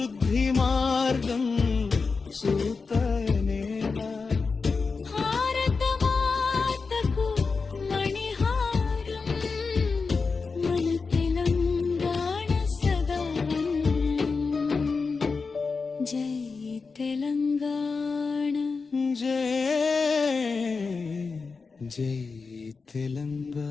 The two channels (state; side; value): quieter; right; 4.6 dB